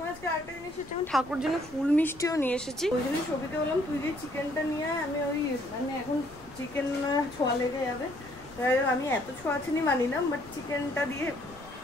আজকে আরেকটা জিনিস হচ্ছে, আমি ঠাকুর জন্য ফুল মিষ্টিও নিয়ে এসেছি। ওই জন্য ছবিতে বললাম তুই যে চিকেনটা নিয়ে আয়, আমি ওই মানে এখন চিকেন ছোঁয়া লেগে যাবে, তাই আমি এত ছোঁয়াছানি মানি না, বাট চিকেনটা দিয়ে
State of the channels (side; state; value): left; noise; rumble, 21 dB below the sound